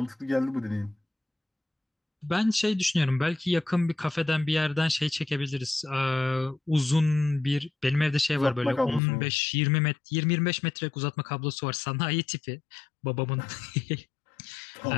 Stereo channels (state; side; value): drops out; right; at 9.0 s